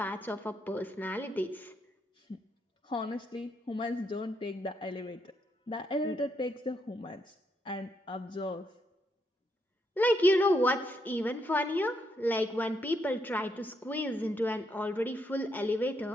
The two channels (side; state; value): both; normal; correlation 0.77